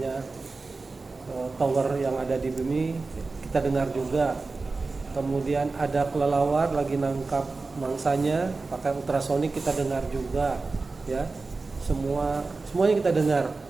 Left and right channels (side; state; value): left; quieter; 3.8 dB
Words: tower yang ada di bumi kita dengar juga. Kemudian ada kelelawar lagi nangkap mangsanya pakai ultrasonik kita dengar juga ya. Semuanya kita dengar.